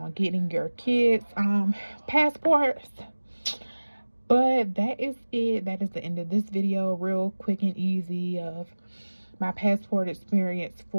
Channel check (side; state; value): both; inverted; correlation -1.00